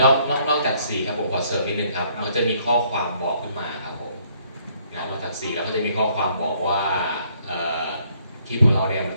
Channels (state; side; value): inverted; both; correlation -0.66